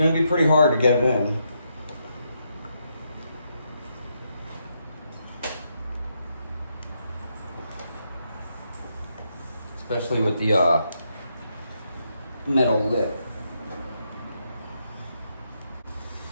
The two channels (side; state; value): both; inverted; correlation -0.80